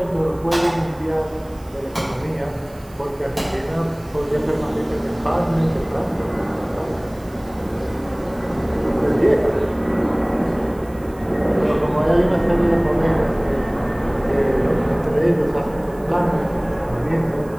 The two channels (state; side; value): noise; right; hiss, 26 dB below the sound